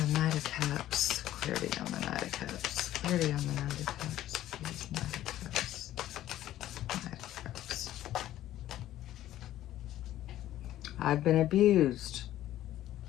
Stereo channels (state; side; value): quieter; right; 13.4 dB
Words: Knight of Cups. Clarity on the Knight of Cups. Clarity on the Knight of Cups. Please, Knight of Cups. Knight of Cups. I've been abused.